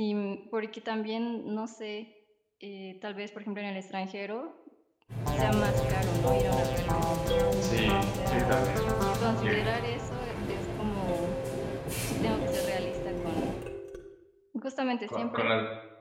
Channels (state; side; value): identical; both; correlation 1.00